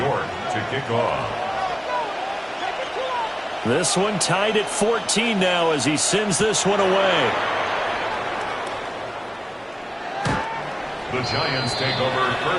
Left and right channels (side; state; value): both; identical; correlation 1.00